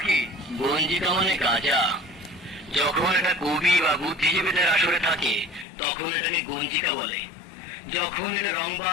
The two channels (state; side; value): drops out; right; at 5.7 s